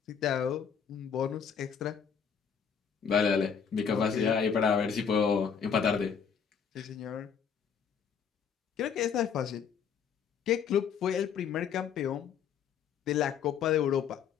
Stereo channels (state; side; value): quieter; right; 7.1 dB